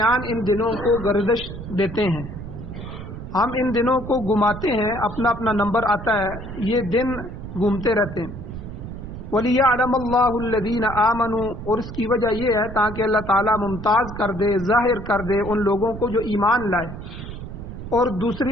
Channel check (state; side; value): noise; right; rumble, 10 dB below the sound